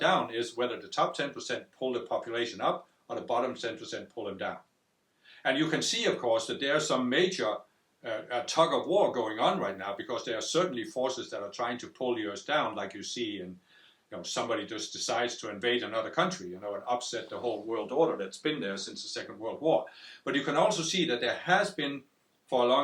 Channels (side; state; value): both; identical; correlation 1.00